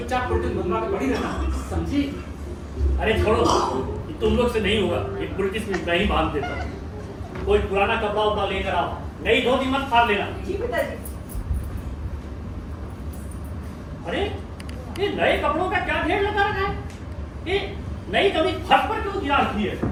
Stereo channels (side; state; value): both; identical; correlation 1.00